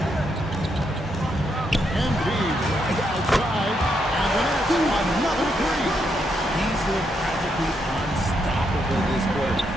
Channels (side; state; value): both; normal; correlation 0.79